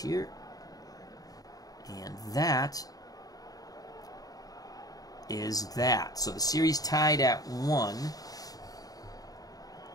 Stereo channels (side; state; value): right; late; 0.18 ms